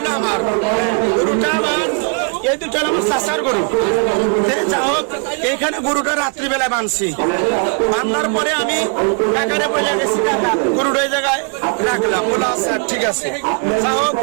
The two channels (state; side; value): quieter; left; 39.8 dB